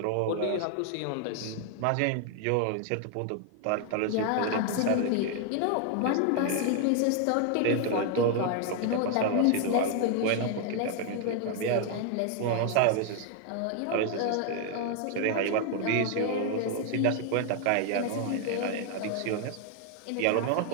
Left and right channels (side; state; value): both; different; correlation 0.00